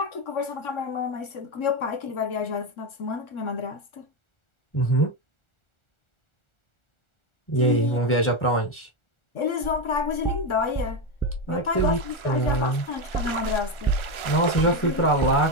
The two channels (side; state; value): right; late; 1.4 ms